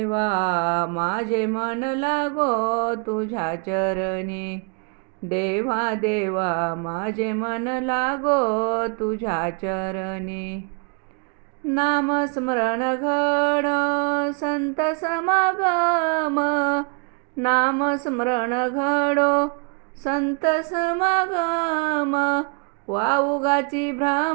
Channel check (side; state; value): left; quieter; 34.9 dB